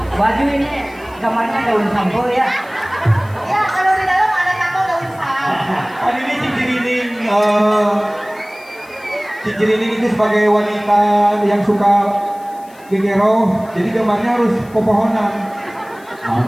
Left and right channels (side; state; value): left; noise; hiss, 27 dB below the sound